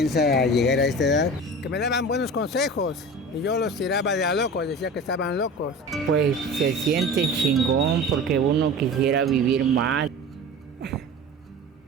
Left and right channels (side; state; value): both; normal; correlation 0.35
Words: llegar a esta edad. Que me daban buenos consejos y yo los tiraba de a locos, decía que estaban locos. Pues se siente chingón porque uno quisiera vivir más.